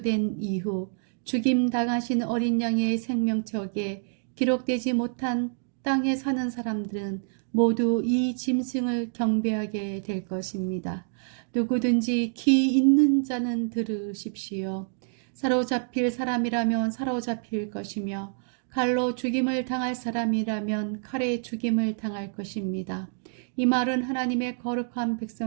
이후 죽임 당하신 어린 양의 생명책에 기록되지 못한 땅에 사는 사람들은 모두 이 짐승을 경배하게 될 것입니다. 누구든지 귀 있는 자는 들으십시오. 사로잡힐 사람이라면 사로잡힐 것이며 칼로 죽임을 당할 사람이라면 칼에 죽임을 당할 것입니다. 이 말은 하나님의 거룩한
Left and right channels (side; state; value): left; silent; 60 dB below the other